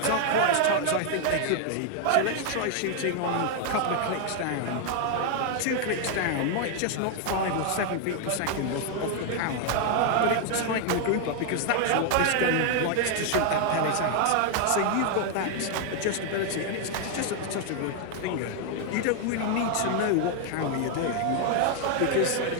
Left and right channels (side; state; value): both; different; correlation 0.00